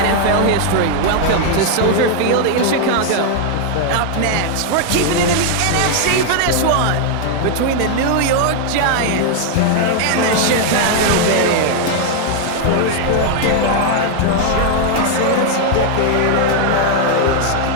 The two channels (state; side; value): different; both; correlation 0.00